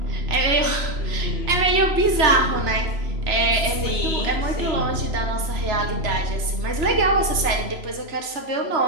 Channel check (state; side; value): late; left; 3.0 ms